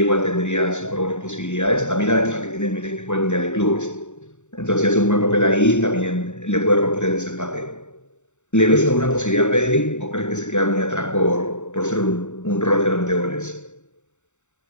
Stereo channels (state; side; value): late; right; 0.84 ms